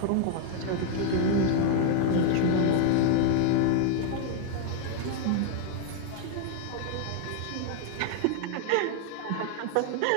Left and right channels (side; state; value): both; different; correlation 0.00